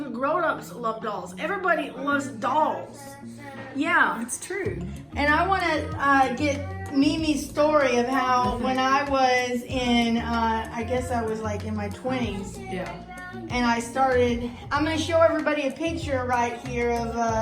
grown-ups love dolls. Everybody loves dolls. Yeah. It's true. And I want to get Mimi's story of how when I was in, I guess I was like in my 20s. Yeah. And I started, I'm going to show everybody a picture right here of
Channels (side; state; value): both; identical; correlation 1.00